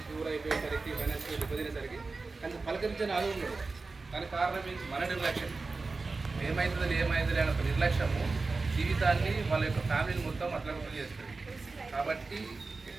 ప్యూర్ అయిపోయేసరికి ఫైనాన్షియల్ ఇబ్బందినేసరికి కానీ పలకరించని ఆలోచన ఉండదు. దానికి కారణం ఏంటి? మన నిర్లక్ష్యం. ఏమవుతుందని అనే ఒక నిర్లక్ష్యము జీవితాన్ని వాళ్ళ యొక్క ఫ్యామిలీని మొత్తం అట్లా చేస్తుంది. కాబట్టి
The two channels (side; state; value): left; quieter; 3.9 dB